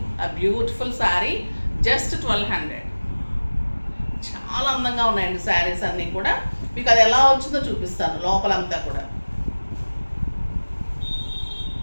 ఆ బ్యూటిఫుల్ శారీ, జస్ట్ 1200. చాలా అందంగా ఉన్నాయండి శారీస్ అన్నీ కూడా. మీకు అది ఎలా వచ్చిందో చూపిస్తాను. లోపలంతా కూడా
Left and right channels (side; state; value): both; inverted; correlation -1.00